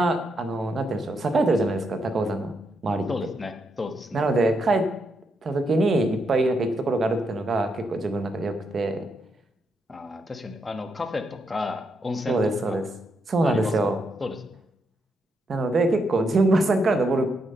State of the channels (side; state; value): both; normal; correlation 0.80